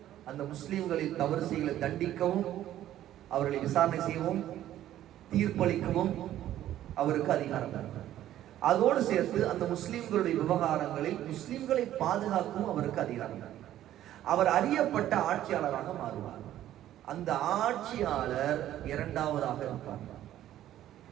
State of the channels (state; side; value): quieter; left; 12.6 dB